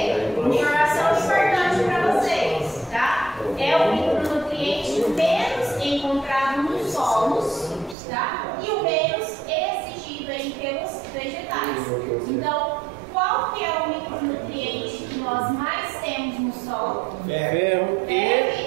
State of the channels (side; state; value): left; drops out; at 8.0 s